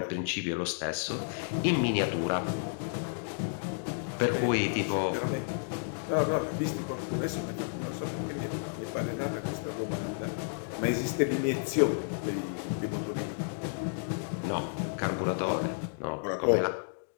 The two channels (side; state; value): right; silent; digital silence